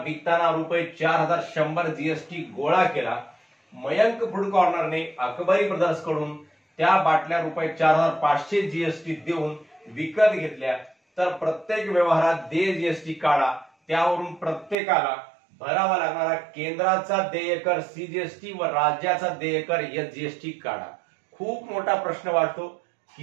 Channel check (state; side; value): drops out; left; at 14.8 s